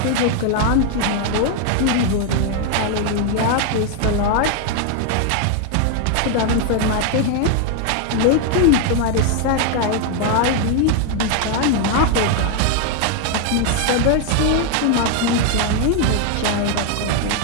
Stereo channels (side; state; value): both; different; correlation 0.01